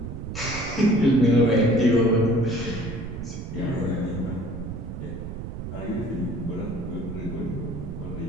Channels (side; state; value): right; noise; rumble, 8 dB below the sound